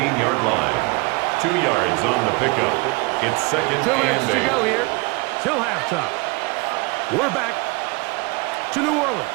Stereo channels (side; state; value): left; quieter; 26.4 dB